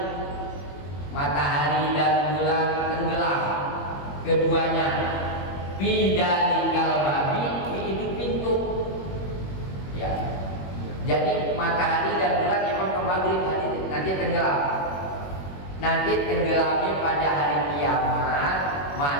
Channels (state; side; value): late; right; 21 ms